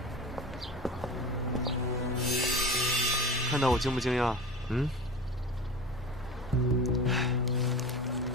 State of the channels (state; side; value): normal; both; correlation 0.34